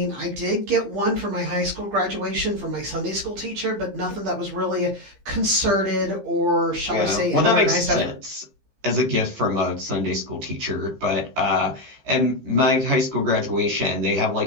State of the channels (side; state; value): left; late; 15 ms